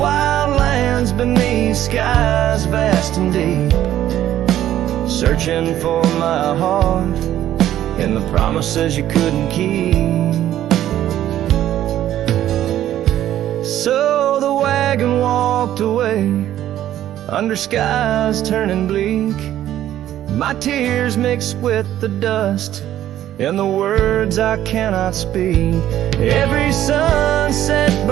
lands beneath skies vast and deep, searching for my heart and the promises you couldn't keep. So the wagon walked away under skies turning bleak. My tears mixed with the dust and the words I cannot speak. Every sunset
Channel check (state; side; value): quieter; left; 12.3 dB